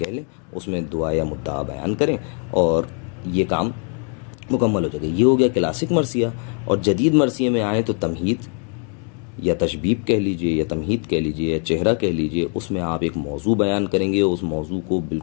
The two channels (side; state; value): right; quieter; 39.3 dB